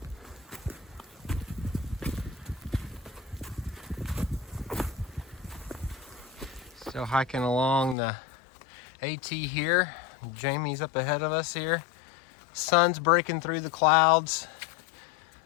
Still hiking along the AT here. Jamie's up ahead of us here. Sun's breaking through the clouds.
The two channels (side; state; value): right; drops out; at 8.0 s